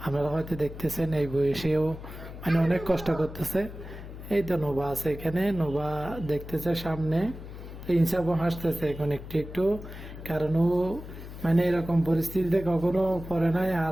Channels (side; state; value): left; noise; hum, 12 dB below the sound